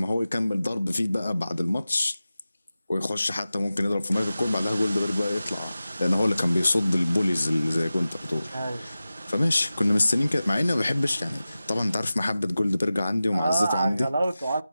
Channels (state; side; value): inverted; both; correlation -0.95